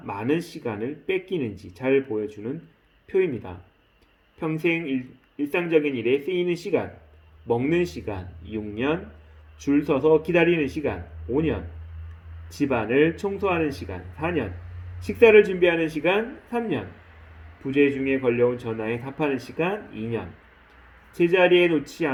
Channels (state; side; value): identical; both; correlation 1.00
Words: 많은 시간을 뺏기는지 잘 보여주는 표입니다. 평생 일상적인 일에 쓰이는 시간, 먹는 시간 6년, 줄 서서 기다리는 시간 5년, 집안을 청소하는 시간 4년, 식사를 준비하는 시간 3년, 부재 중에 걸려온 전화에 답하는 시간 2년, 제자리에 놓지